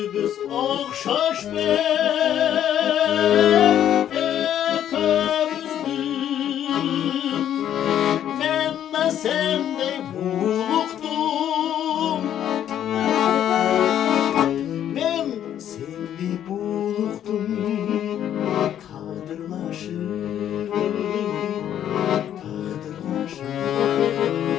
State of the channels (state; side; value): quieter; right; 10.5 dB